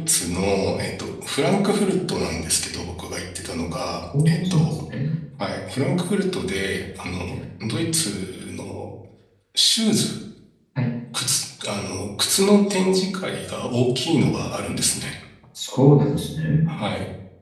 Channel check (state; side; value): identical; both; correlation 1.00